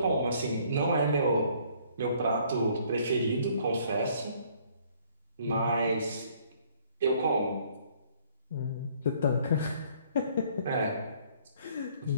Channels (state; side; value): inverted; both; correlation -0.61